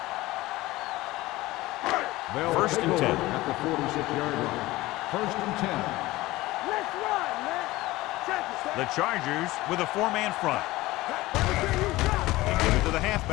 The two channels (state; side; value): quieter; right; 18.7 dB